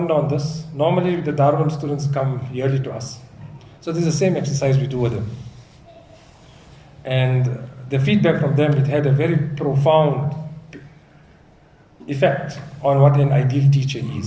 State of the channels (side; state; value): both; identical; correlation 1.00